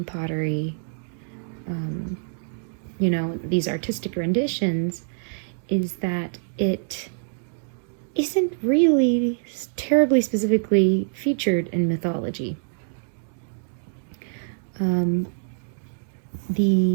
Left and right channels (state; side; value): silent; left; digital silence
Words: pottery, these artistic renditions, is that it isn't really terribly specifically featured in mythology.